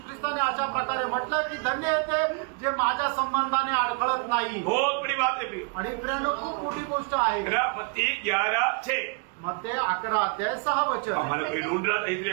ख्रिस्ताने अशा प्रकारे म्हटलं की धन्य आहे ते जे माझ्या संबंधाने अडखळत नाही. बहुत बड़ी बात है. आणि प्रेरणा खूप मोठी गोष्ट आहे. मत्ती 11:6 मत्ते 11:6 हमारा कोई ढूंढ रहा था इसलिए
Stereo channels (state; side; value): quieter; left; 34.4 dB